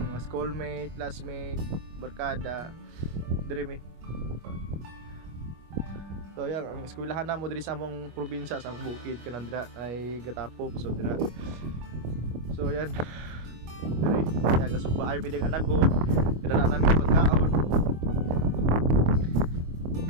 mga schoolmate, classmate, barkada diri mi. So yan ang eskwelahan namo diri sa among probinsya sa Bukid kanan dira ay Gatapok. So dira. So yan. Diri ya gasugbaay mi ding anagon. Kadala namin pagkaon.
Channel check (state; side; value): late; left; 25 ms